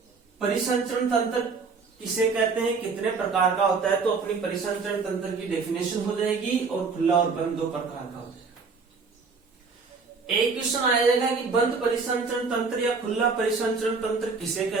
परिसंचरण तंत्र किसे कहते हैं, कितने प्रकार का होता है, तो अपनी परिसंचरण तंत्र की डेफिनेशन हो जाएगी, और खुला और बंद दो प्रकार का हो जाएगा। एक क्वेश्चन आ जाएगा कि बंद परिसंचरण तंत्र या खुला परिसंचरण तंत्र किसे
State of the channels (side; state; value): left; quieter; 4.7 dB